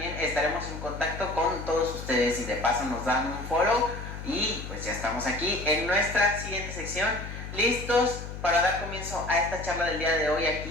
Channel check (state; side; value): noise; left; hum, 9 dB below the sound